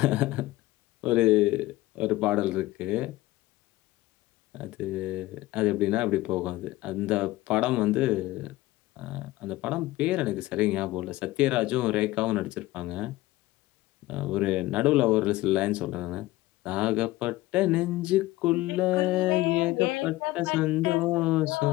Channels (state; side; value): quieter; right; 18.0 dB